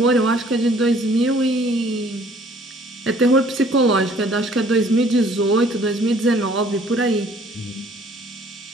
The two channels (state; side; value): normal; both; correlation 0.57